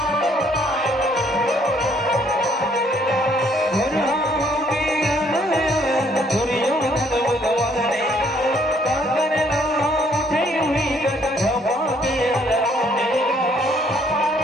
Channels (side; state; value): both; normal; correlation 0.65